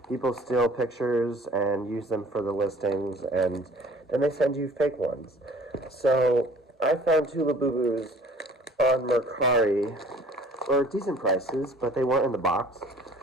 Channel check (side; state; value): both; normal; correlation 0.51